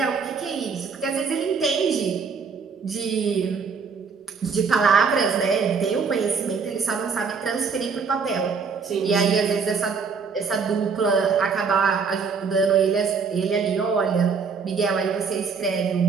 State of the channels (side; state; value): left; quieter; 5.5 dB